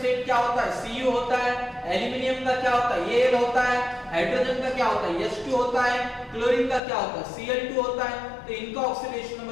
क्या होता है, Cu होता है। एल्यूमिनियम का क्या होता है, Al होता है। हाइड्रोजन का क्या होता है, H2 होता है। क्लोरीन का क्या होता है, Cl2 होता है। तो इनका ऑक्सीडेशन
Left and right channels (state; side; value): drops out; right; at 6.8 s